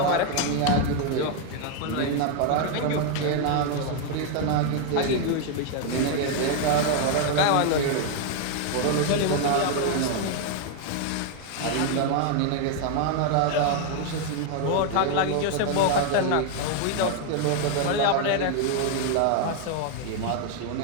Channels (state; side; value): different; both; correlation 0.00